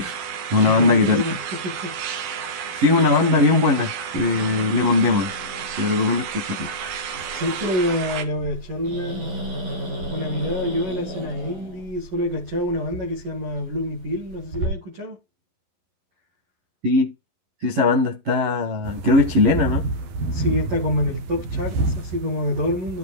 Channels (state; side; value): late; left; 11 ms